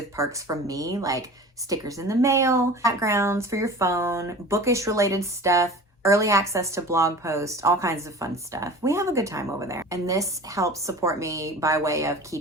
perks from me, like stickers in the mail, backgrounds for your phone, bookish related stuff, early access to blog posts, all kinds of fun stuff. We have a good time over there. And this helps support me by way of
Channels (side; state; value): both; normal; correlation 0.39